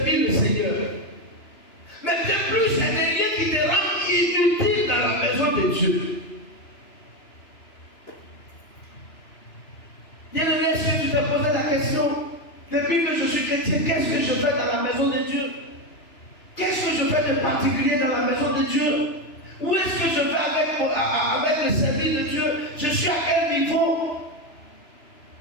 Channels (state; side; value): late; right; 2.9 ms